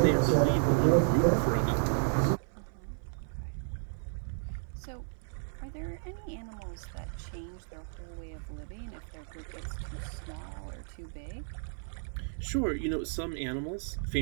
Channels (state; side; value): silent; left; 56 dB below the other